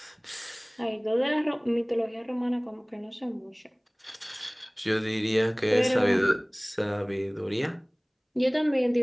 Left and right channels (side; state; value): both; identical; correlation 1.00